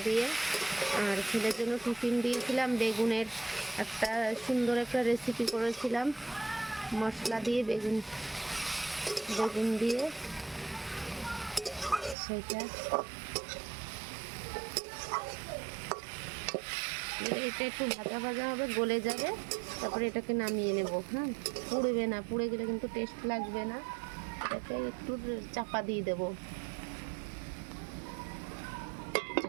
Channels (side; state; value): left; drops out; at 12.2 s